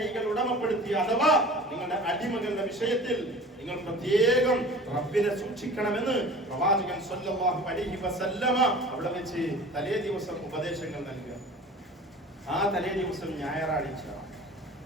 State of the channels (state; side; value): normal; both; correlation 0.42